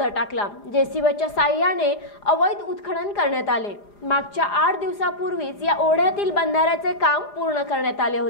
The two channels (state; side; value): late; right; 4.9 ms